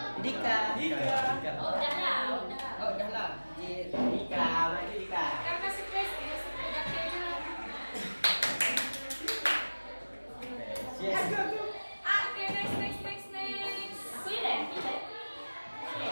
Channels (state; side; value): inverted; both; correlation -1.00